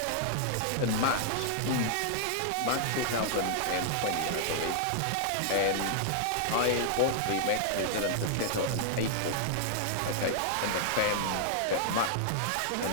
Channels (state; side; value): different; both; correlation -0.01